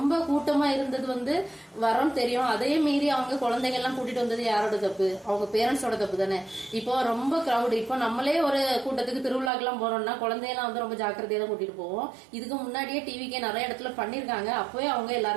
கூட்டமா இருந்தது வரோன்னு தெரியும், அதே மீறி அவங்க குழந்தைகள் எல்லாம் கூட்டிட்டு வந்தது யாரோட தப்பு? அவங்க பேரண்ட்ஸோட தப்பு தானே. இப்போ ரொம்ப கிரௌட், இப்போ நம்மளே ஒரு கூட்டத்துக்கு திருவிழாக்கெல்லாம் போறோம்னா குழந்தையெல்லாம் ரொம்ப ஜாக்கிரதையா தான் கூட்டிட்டு போவோம். இதுக்கு முன்னாடியே டிவிக்கே நிறைய இடத்துல பண்ணிருக்காங்க. அப்பவே அவங்க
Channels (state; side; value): drops out; left; at 9.5 s